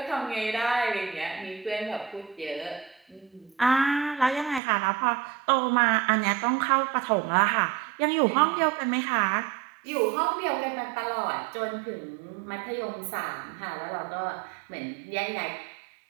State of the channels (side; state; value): left; drops out; at 4.6 s